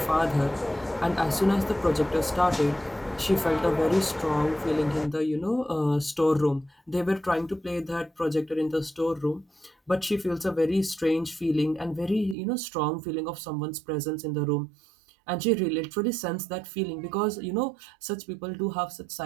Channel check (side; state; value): left; drops out; at 12.4 s